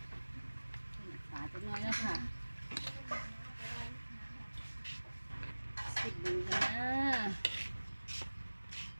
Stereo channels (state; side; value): inverted; both; correlation -1.00